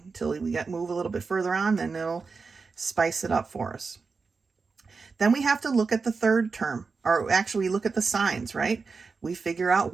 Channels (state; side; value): quieter; left; 4.7 dB